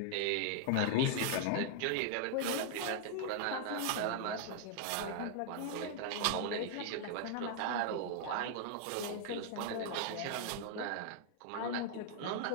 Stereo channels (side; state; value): both; different; correlation 0.00